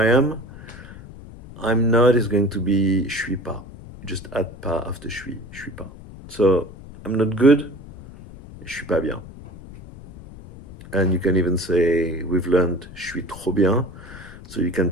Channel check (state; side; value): noise; left; rumble, 16 dB below the sound